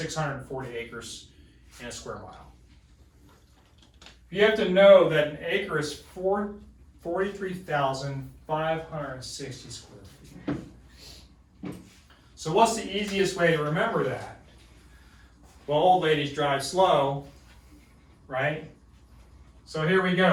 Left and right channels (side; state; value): both; identical; correlation 1.00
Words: acres in a square mile. You have to know that an acre is 43,560 square feet. So what's the easiest way to remember that? Well, old ladies drive slow, right? So here we